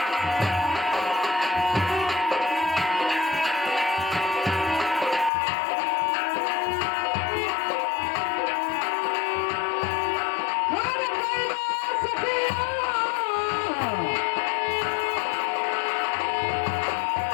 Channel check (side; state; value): right; drops out; at 5.3 s